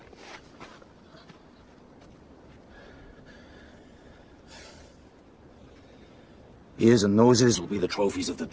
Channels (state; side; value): identical; both; correlation 1.00